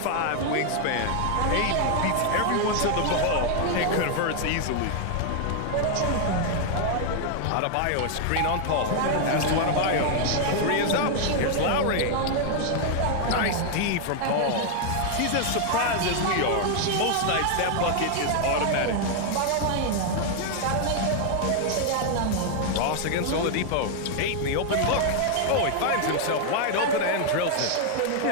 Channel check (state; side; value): different; both; correlation 0.00